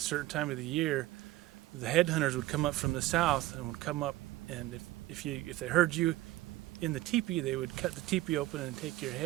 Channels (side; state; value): left; quieter; 16.4 dB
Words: time of the year, the headhunters would come up from the south and would come up, and if they heard you in the teepee, they would cut the teepee open and take your